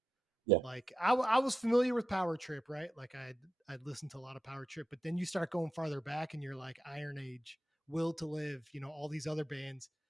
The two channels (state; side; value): normal; both; correlation 0.87